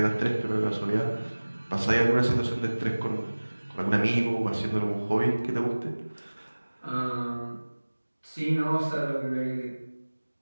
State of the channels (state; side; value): inverted; both; correlation -1.00